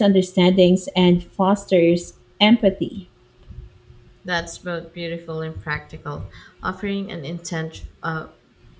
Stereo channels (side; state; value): both; identical; correlation 1.00